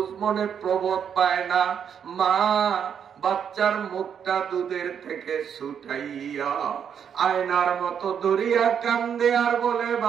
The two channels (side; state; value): left; quieter; 7.9 dB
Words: মনে প্রবোধ পায় না। মা বাচ্চার মুখটা দুধের থেকে ছুটাইয়া আয়নার মতো ধরিয়া কান্দে আর বলে,